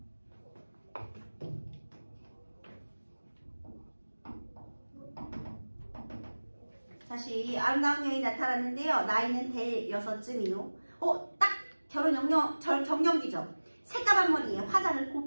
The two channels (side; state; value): both; inverted; correlation -1.00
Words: 다시 아름다운 여인이 나타났는데요. 나이는 대여섯쯤이요. 딱 결혼 정년기죠. 새까만 머리에 화장을